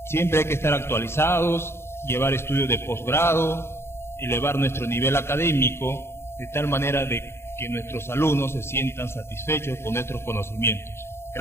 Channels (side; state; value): right; late; 0.12 ms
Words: Siempre hay que estar actualizados, llevar estudios de posgrado, elevar nuestro nivel académico, de tal manera de que nuestros alumnos se sientan satisfechos con nuestros conocimientos.